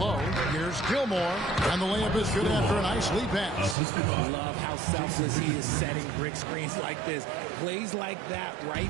here's Gilmore, and the layup is good after a nice lead pass. Love how selfless he is setting brick screens like this. Plays like that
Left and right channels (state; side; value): drops out; left; at 3.8 s